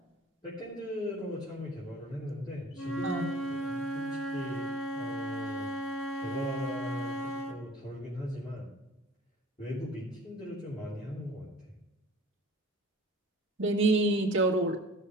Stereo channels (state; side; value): normal; both; correlation 0.47